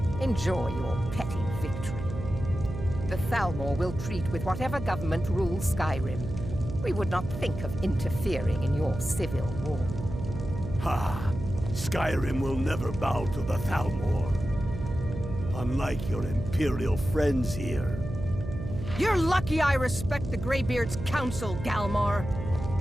Enjoy your petty victory. The Thalmor will treat with whatever government rules Skyrim. We would not think of interfering in your civil war. Ha! Skyrim will never bow to the Thalmor. Unlike your Imperial friends here. You're lucky I respect the Greybeard's counsel, Galmar.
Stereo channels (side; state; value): right; noise; hum, 8 dB below the sound